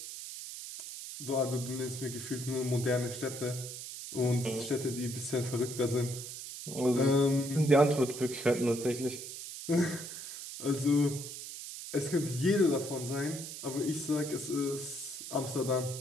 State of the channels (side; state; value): right; noise; hiss, 9 dB below the sound